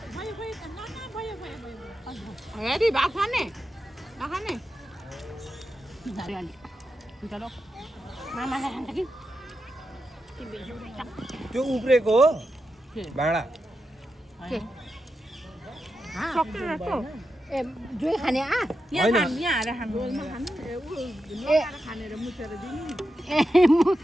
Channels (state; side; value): normal; both; correlation 0.88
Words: हेरी भात खाने नखाने मामाले खान्छ कि त्यो उब्रेको हो भाँडा ए जोइ खाने यहाँ होइन। आएर खानु खानेर मुछेर दिनु ए